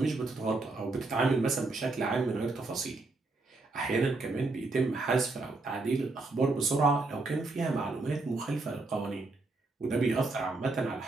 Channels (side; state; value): left; quieter; 3.4 dB